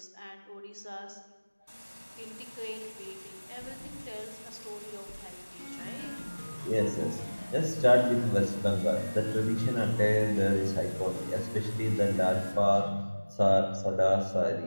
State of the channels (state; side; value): inverted; both; correlation -1.00